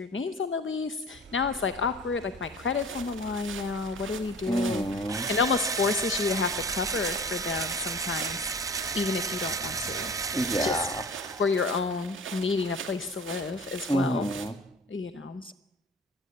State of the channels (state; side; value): normal; both; correlation 0.40